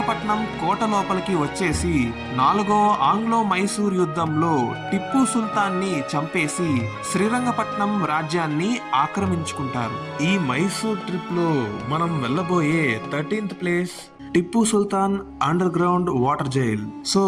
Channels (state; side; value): identical; both; correlation 1.00